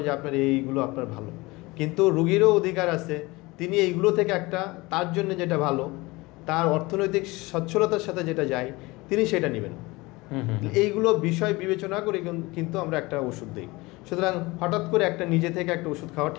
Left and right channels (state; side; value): quieter; right; 22.5 dB